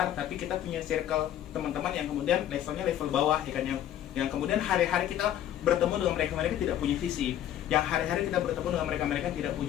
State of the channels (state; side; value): quieter; right; 11.4 dB